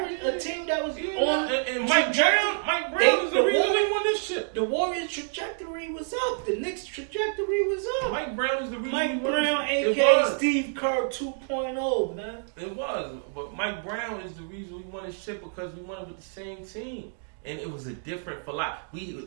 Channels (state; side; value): silent; left; digital silence